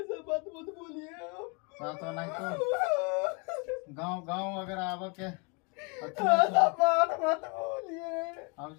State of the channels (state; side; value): quieter; right; 33.4 dB